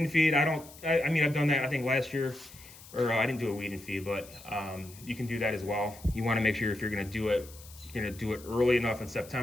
feed. I've done that I think last year, or I didn't do a weed and feed, but you can do that as well. You want to make sure if you're going to do it, you're going to do it early enough in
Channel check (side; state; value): left; noise; hiss, 19 dB below the sound